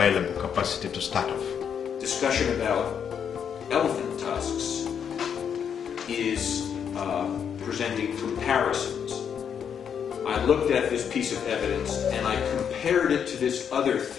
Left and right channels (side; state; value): right; quieter; 7.8 dB